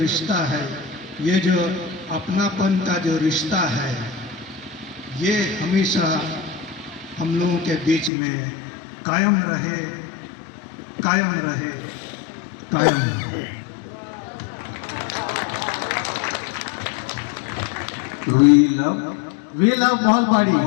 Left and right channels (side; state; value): right; drops out; at 8.1 s